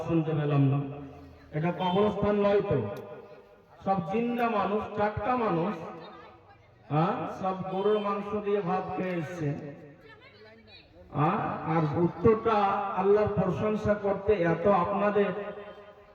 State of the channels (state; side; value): identical; both; correlation 1.00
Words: শুনতে পেলাম না? এটা কবরস্থান নয় তো, সব জিন্দা মানুষ, টাটকা মানুষ, সব গরুর মাংস দিয়ে ভাত খেয়ে এসছে। আর উত্তরটা আল্লাহর প্রশংসা করতে এত আপনাদের